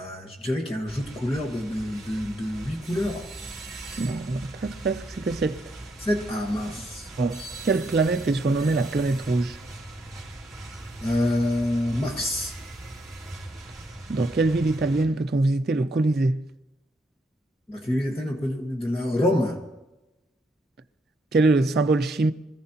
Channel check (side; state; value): both; normal; correlation 0.76